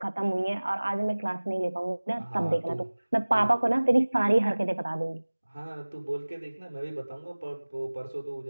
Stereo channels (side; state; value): both; inverted; correlation -1.00